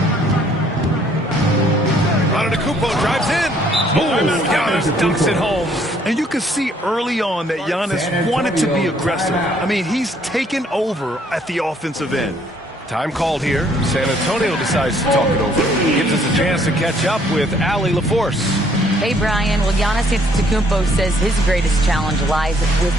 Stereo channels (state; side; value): normal; both; correlation 0.64